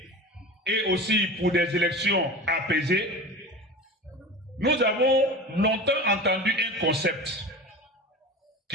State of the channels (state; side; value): normal; both; correlation 0.32